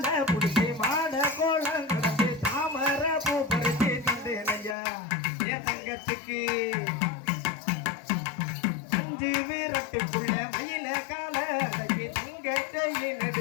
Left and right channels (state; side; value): drops out; right; at 4.8 s